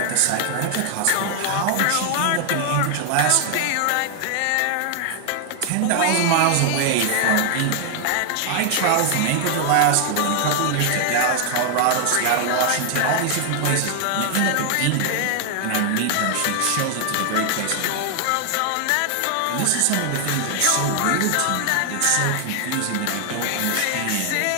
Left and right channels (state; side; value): different; both; correlation 0.00